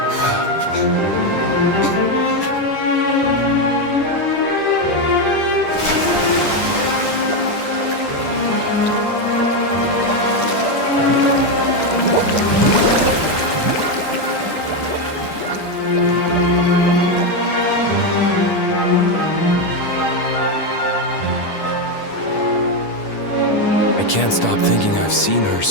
I can't stop thinking I've seen her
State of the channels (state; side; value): late; right; 10 ms